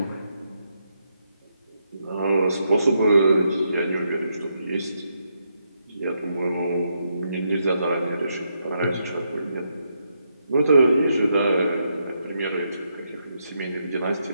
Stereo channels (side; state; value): both; inverted; correlation -0.80